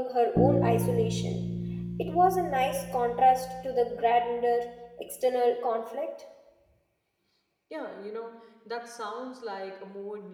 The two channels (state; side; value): identical; both; correlation 1.00